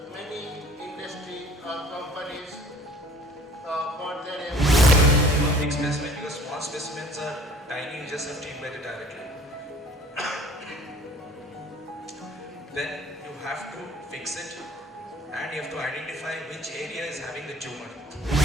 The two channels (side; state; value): both; normal; correlation 0.51